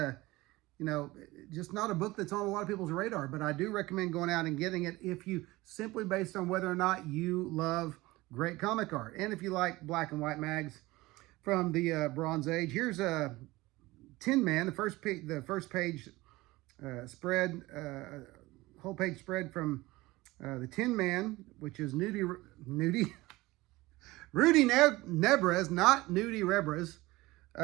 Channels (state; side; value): quieter; left; 20.0 dB